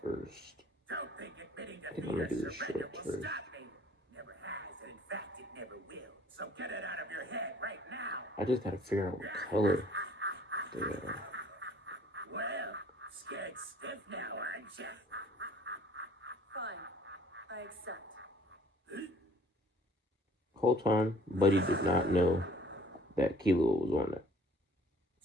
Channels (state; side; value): normal; both; correlation 0.55